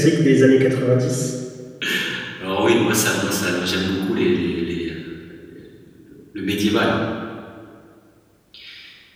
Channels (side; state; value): both; identical; correlation 1.00